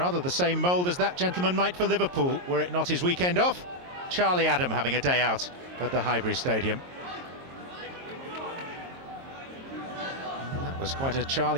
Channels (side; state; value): left; late; 22 ms